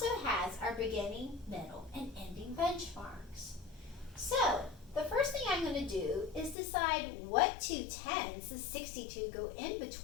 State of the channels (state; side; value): drops out; right; at 6.6 s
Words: has our beginning, middle, and ending benchmarks. So, the first thing I'm going to do is decide what two tens does 62 go in